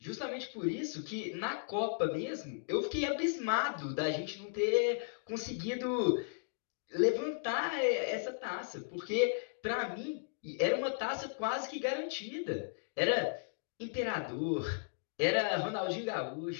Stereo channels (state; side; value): silent; right; digital silence